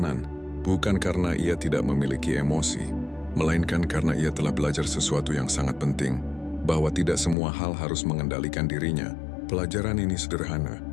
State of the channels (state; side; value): drops out; right; at 7.4 s